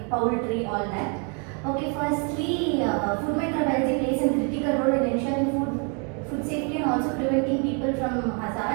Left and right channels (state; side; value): quieter; left; 37.1 dB